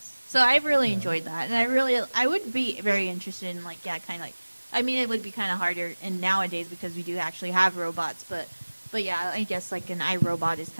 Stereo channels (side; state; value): both; inverted; correlation -1.00